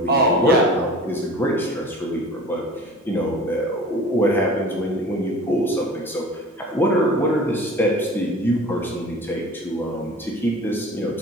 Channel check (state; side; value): normal; both; correlation 0.41